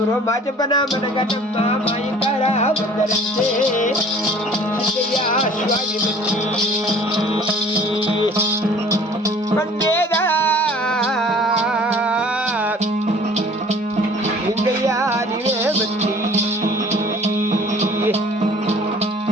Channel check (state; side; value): normal; both; correlation 0.50